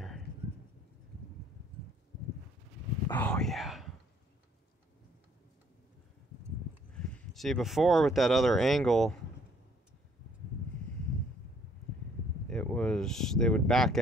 Oh yeah. See, before with that other angle, they would back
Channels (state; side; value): normal; both; correlation 0.63